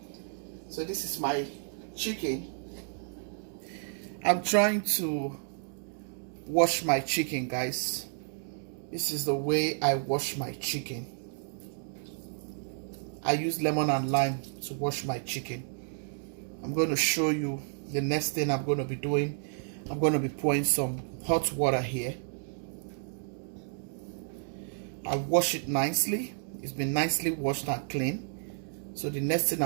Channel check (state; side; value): silent; left; digital silence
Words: so this is my chicken. I'm trying to wash my chicken, guys. This is the way I wash my chicken. I use lemon and lime to wash my chicken. I'm going to show you the next thing I'm going to be doing. I'm going to be pouring some hot water here. I wash it nicely. It's been nicely washed and clean. So the next thing